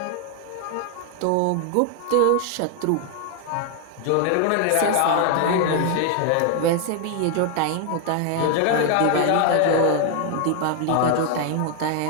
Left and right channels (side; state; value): both; different; correlation 0.00